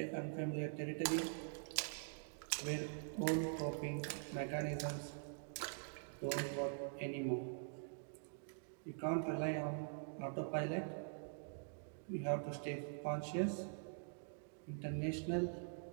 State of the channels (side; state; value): left; silent; digital silence